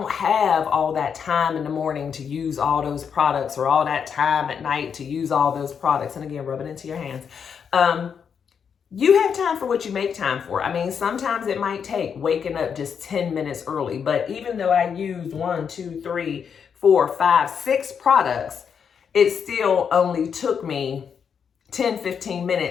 have all that time in the morning to use all those products, or all that time at night to use all those products, and again, rub it into your hands. You have time for what you make time for. I mean, sometimes it might take waking up just 10 minutes early, but even though I used 1, 2, 3, 4, 5, 6 products, it still only took me 10-15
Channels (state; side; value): quieter; right; 7.0 dB